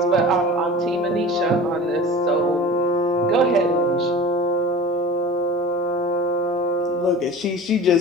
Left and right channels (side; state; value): both; normal; correlation 0.37